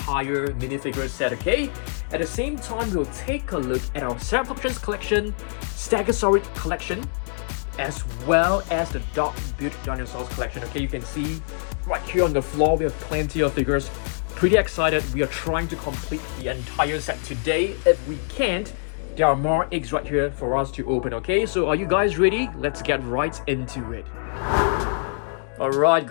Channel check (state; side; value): silent; right; digital silence